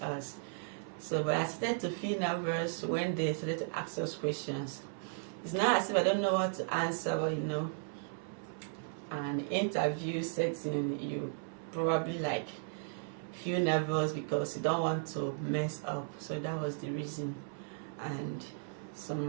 us. So, but I started to feel nervous when they started to ask us questions. It's not as if I don't know what to answer, but you know, an interview setting, you probably like feel nervous because you don't want to mess up. So that was the reason. And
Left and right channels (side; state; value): left; silent; 54 dB below the other